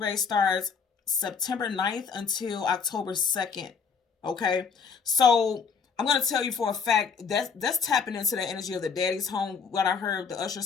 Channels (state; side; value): quieter; right; 5.8 dB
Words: starts September 9th until October 2nd. Okay, so I'm going to tell you for a fact that's tapping into the energy of the Daddy's Home. What I heard, the Usher